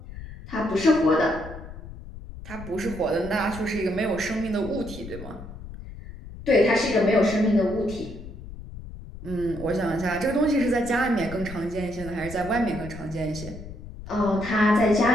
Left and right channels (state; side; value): noise; left; rumble, 13 dB below the sound